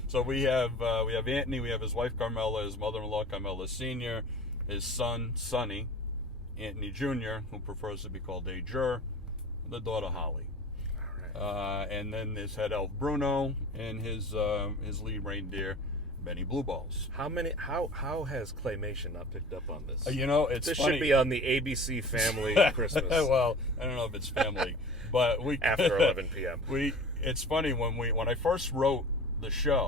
So we have Anthony, we have his wife Carmela, his mother-in-law Carmela Senior, his son Sonny, Anthony Jr., who prefers to be called a Jur, the daughter Holly. All right. And then his head elf Bruno, and his lead reindeer Benny Blueballs. How has Claymation not picked up on this? It's this funny. should be on the ABC Family Christmas. Well, I don't know if it's family, but after 11 p.m. It's funny when I first wrote the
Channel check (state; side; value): normal; both; correlation 0.40